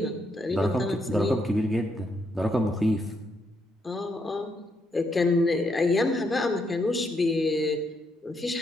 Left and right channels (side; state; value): both; normal; correlation 0.77